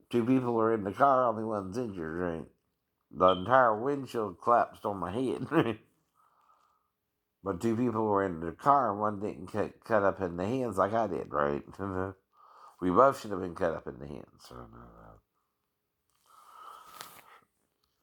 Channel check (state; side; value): identical; both; correlation 1.00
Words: two people were in the car, only one's injured, right? The entire windshield collapsed on my head. But two people were in the car, and one didn't get cut up in the hands like I did, right? We both should have been cut up in the hands. So,